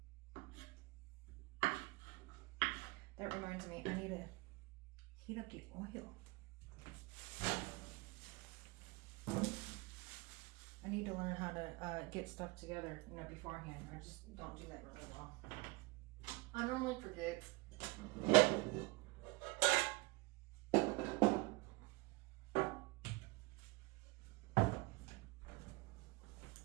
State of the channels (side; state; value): left; quieter; 24.9 dB